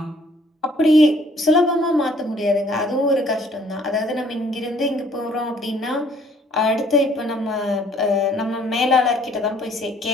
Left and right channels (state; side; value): normal; both; correlation 0.60